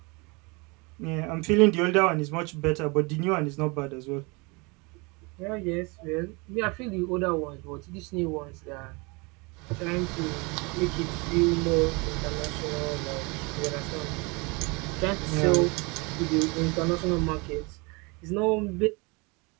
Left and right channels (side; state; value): left; quieter; 28.5 dB